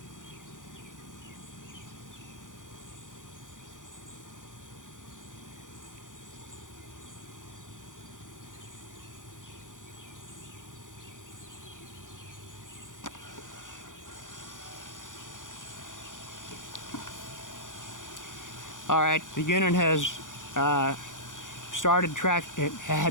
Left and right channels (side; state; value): right; late; 0.87 ms